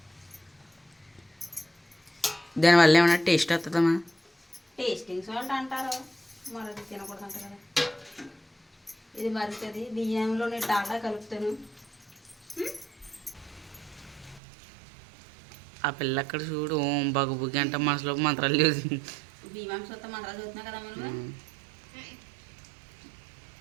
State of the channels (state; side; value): drops out; left; at 14.4 s